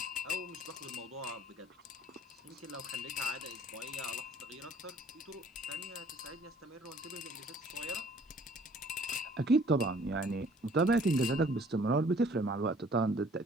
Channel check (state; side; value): normal; both; correlation 0.56